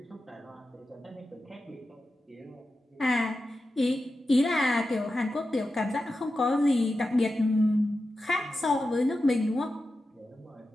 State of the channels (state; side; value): normal; both; correlation 0.91